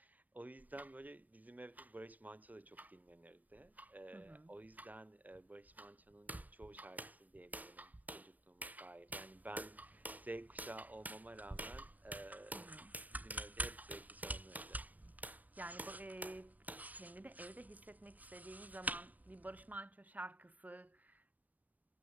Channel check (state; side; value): late; left; 0.081 ms